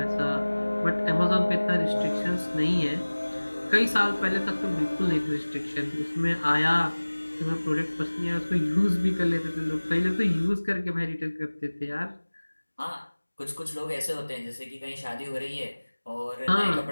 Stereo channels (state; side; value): inverted; both; correlation -1.00